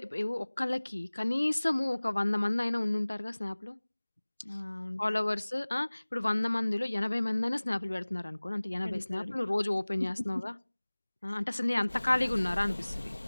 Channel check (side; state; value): both; inverted; correlation -1.00